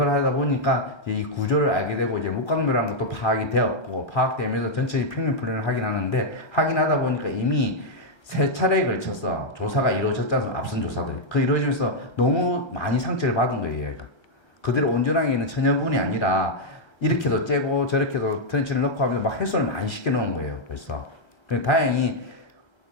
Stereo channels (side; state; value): right; late; 1.3 ms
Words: 하다 보니까 이 구조를 알게 되고 이제 목각묘라는 것도 파악이 되었고 파악되면서 전체 평면 플랜을 하긴 하는데 하긴 하다 보니까 이미 3차례에 걸쳐서 조사가 이루어졌잖아요. 앞선 조사들이. 그 이루어지면서 너무 많이 상처를 받은 거예요. 얘가. 그대로 온전하게 있는 천연분이 아니라 이렇게도 째고 저렇게도 트렌치를 넣고 하면서 막 해소를 많이 시켜놓은 거예요. 벌써. 다행히